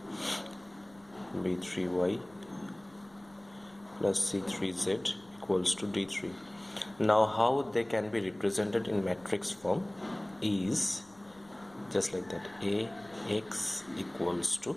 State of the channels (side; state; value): left; noise; rumble, 27 dB below the sound